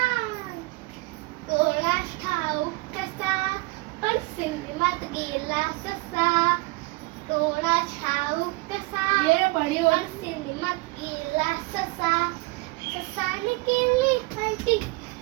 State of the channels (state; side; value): quieter; left; 24.0 dB